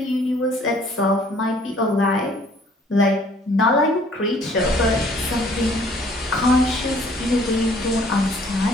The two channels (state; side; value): normal; both; correlation 0.58